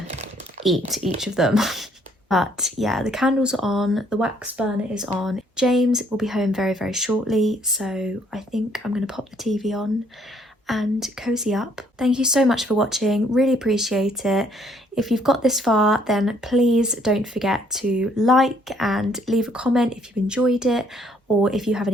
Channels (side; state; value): both; normal; correlation 0.65